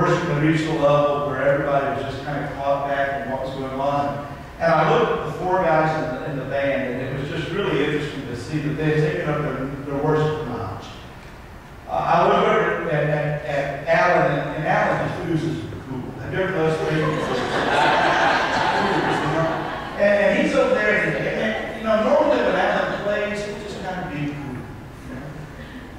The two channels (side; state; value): both; identical; correlation 1.00